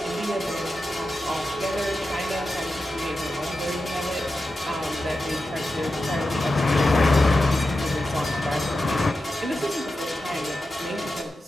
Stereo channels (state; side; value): normal; both; correlation 0.91